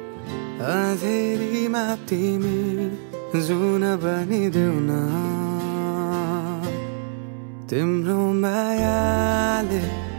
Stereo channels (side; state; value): left; silent; 63 dB below the other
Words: अँधेरीमा तिमी जुन बनिदेऊ न तिम्रो मायाले